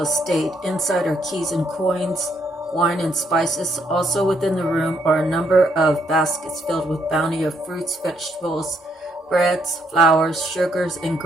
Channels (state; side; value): normal; both; correlation 0.73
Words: estate. Inside are keys and coins, wine and spices. Also within the room are a number of baskets filled with bounty of fruits, vegetables, breads, flours, sugars, and